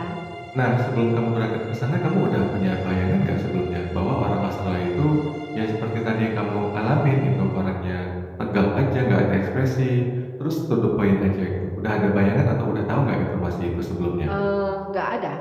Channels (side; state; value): both; identical; correlation 1.00